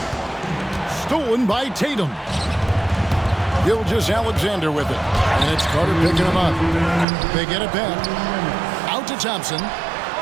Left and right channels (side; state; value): left; drops out; at 7.1 s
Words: Stolen by Tatum. Gilgeous-Alexander with it. And it's Carter picking him up. They get it back. Out to Thompson.